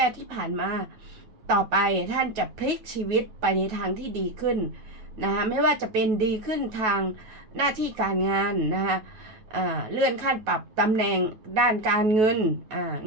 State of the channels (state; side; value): late; left; 9.2 ms